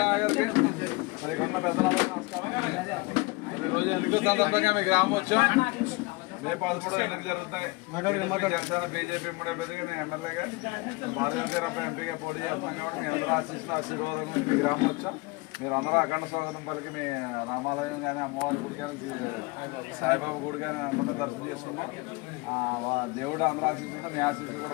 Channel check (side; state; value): right; quieter; 25.1 dB